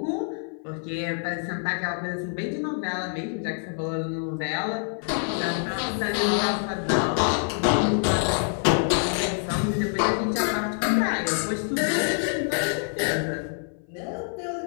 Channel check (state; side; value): silent; right; 56 dB below the other